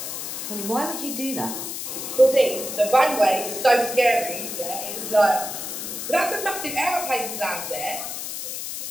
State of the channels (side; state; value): left; noise; hiss, 6 dB below the sound